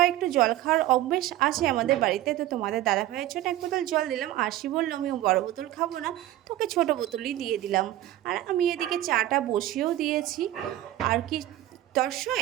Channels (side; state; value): left; quieter; 14.4 dB